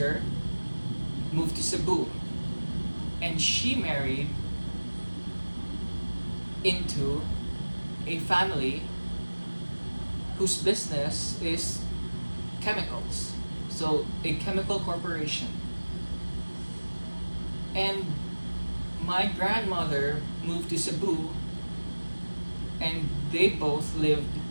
moved to Cebu, and she married into a family whose business is chemicals, so a chemical corporation. And my grandmother moved to Cebu, and they both lived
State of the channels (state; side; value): inverted; both; correlation -1.00